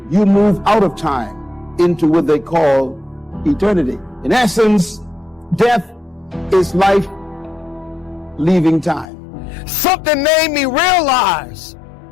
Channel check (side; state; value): right; drops out; at 9.1 s